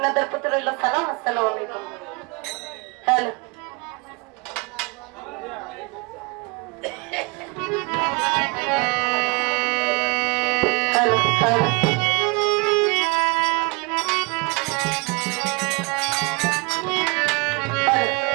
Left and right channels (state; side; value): quieter; left; 28.1 dB